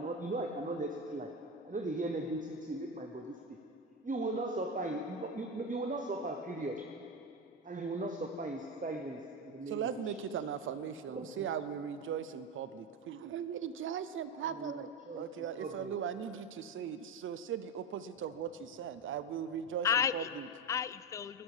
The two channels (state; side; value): normal; both; correlation 0.16